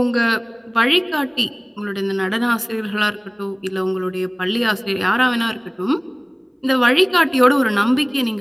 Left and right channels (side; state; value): both; identical; correlation 1.00